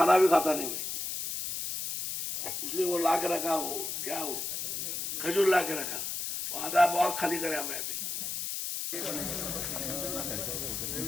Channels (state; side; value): noise; left; hiss, 3 dB below the sound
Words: भी खाता नहीं मैं, इसलिए वो ला के रखा, हो क्या हो खजूर ला के रखा, वो आधा बहुत खाली करे हमें अभी।